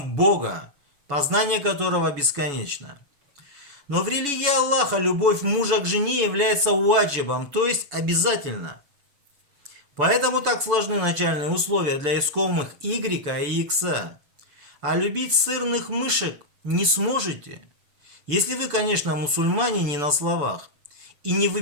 Бога, познание которого бесконечно. Но в религии Аллаха любовь мужа к жене является ваджибом, то есть обязательно. Поэтому так сложны начальные условия для искомых Y и X. А любить сырных мышек не сможете, если вы, конечно, мусульмане не на словах, и не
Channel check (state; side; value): late; left; 7.0 ms